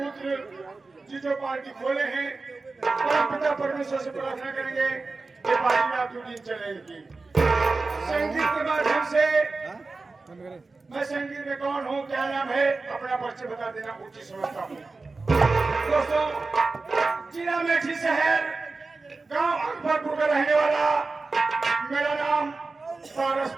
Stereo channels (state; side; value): quieter; left; 3.8 dB